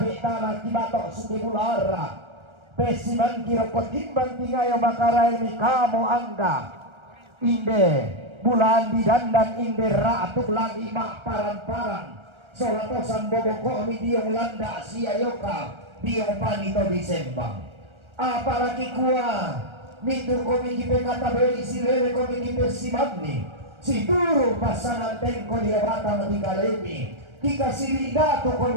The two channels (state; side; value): late; left; 1.3 ms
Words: tanah kibatok suki bulara pesiman kirokot timbang tingayo makarael mi kamu angga inde bulan di dandan inde ratuk lagi mak paran-paran solatosan boboko mi diong landa siayoka diong panito disembang apalagi kuah mintur komiki pekatabi sirene komiki pesimagni si turu pasangan tengko dia batang tiga lemi kika siri datu